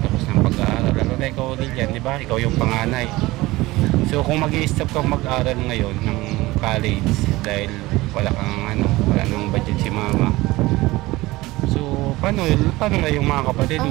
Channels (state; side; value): quieter; left; 19.5 dB